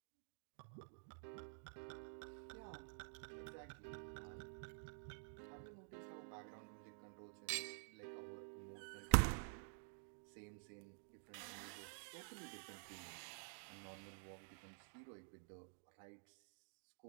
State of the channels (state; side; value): silent; left; digital silence